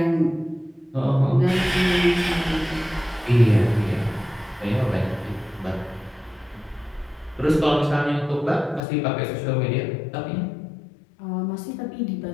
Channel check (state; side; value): drops out; right; at 8.8 s